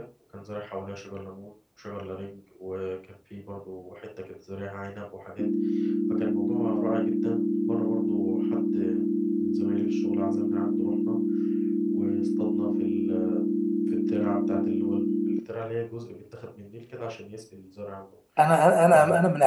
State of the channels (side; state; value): both; identical; correlation 1.00